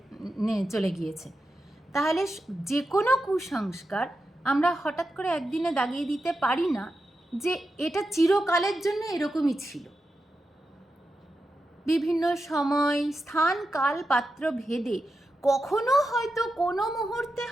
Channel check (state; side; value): normal; both; correlation 0.89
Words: চলে গিয়েছে। তাহলে যে কোনো কুসংস্কার আমরা হঠাৎ করে একদিনে দাগিয়ে দিতে পারি না যে এটা চিরকালের জন্য এরকমই ছিল। বিভিন্ন সময়, স্থান, কাল, পাত্র ভেদে কখনো হয়তো কোনো মুহূর্তে